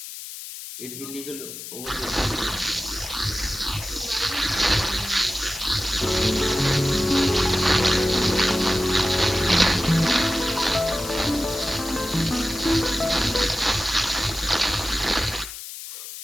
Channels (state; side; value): noise; left; hiss, 11 dB below the sound